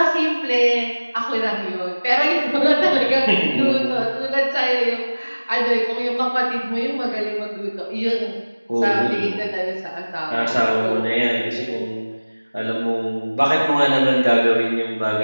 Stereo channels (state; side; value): inverted; both; correlation -1.00